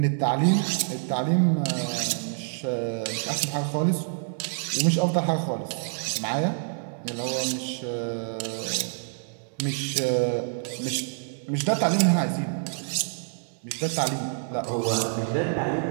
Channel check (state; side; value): silent; left; digital silence